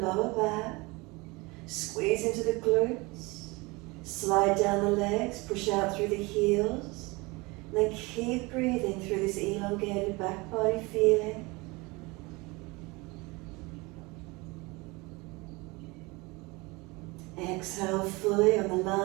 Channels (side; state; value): left; quieter; 24.9 dB